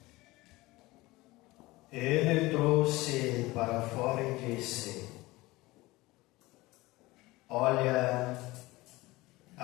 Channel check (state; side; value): quieter; right; 20.4 dB